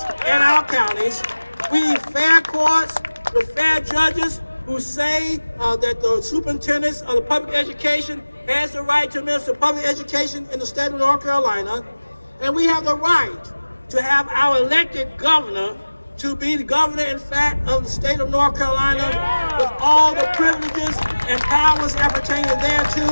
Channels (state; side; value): inverted; both; correlation -1.00